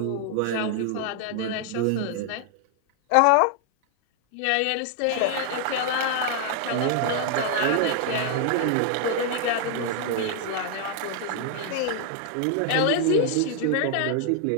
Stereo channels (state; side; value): different; both; correlation 0.00